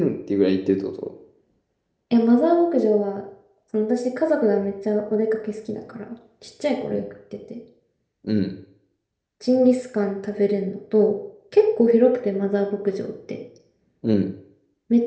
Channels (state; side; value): identical; both; correlation 1.00